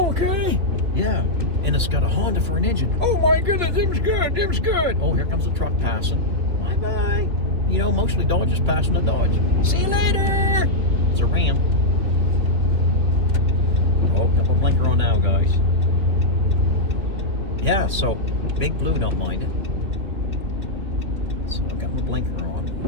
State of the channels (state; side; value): late; left; 3.2 ms